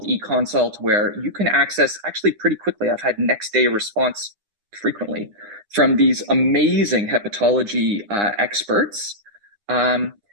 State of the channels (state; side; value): late; left; 9.8 ms